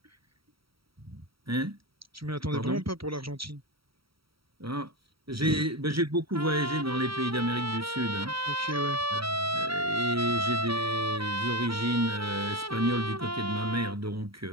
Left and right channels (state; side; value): late; left; 0.75 ms